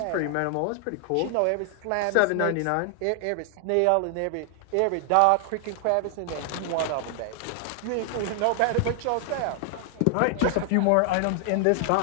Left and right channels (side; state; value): both; different; correlation 0.00